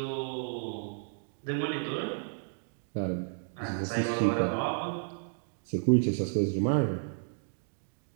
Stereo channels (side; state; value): left; silent; digital silence